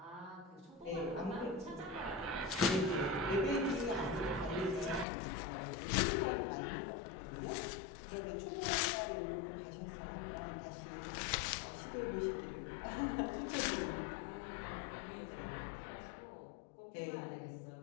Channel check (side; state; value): right; drops out; at 5.1 s